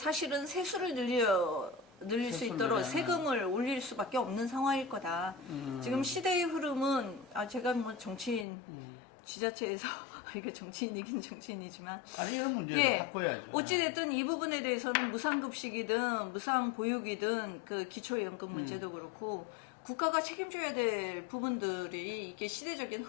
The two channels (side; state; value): right; drops out; at 8.5 s